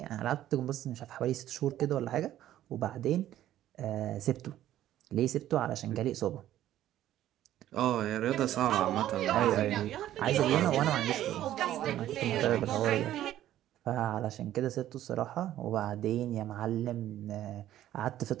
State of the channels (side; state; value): left; quieter; 12.8 dB